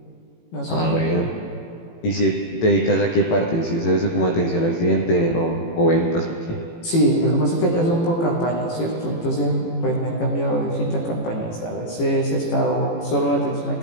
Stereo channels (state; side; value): late; right; 18 ms